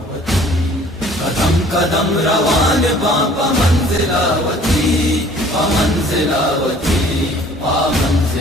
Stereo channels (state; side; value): normal; both; correlation 0.53